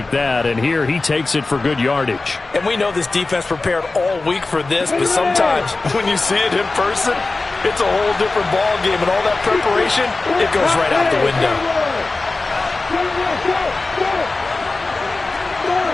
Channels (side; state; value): right; quieter; 3.4 dB